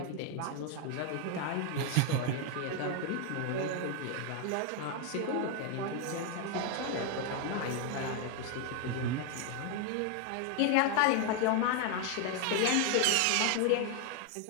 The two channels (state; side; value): different; both; correlation 0.01